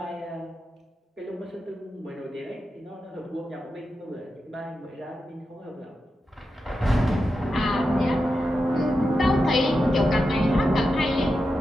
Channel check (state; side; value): normal; both; correlation 0.89